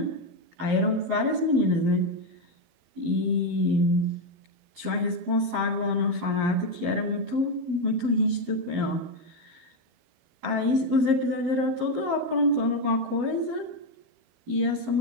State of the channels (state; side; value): late; left; 12 ms